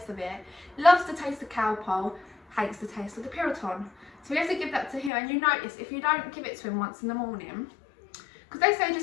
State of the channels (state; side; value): drops out; right; at 5.1 s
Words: of it. Loves the taste of cowpole, hates the taste of the Puritan. So we have to give that to him, and you notice if you don't give it to him once in the morning, because they say